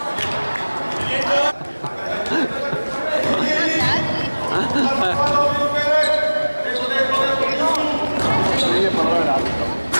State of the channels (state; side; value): inverted; both; correlation -1.00